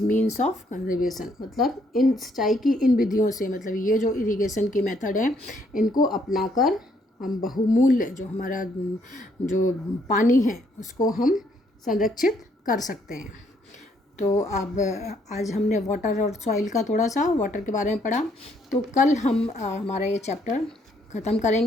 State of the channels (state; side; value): normal; both; correlation 0.69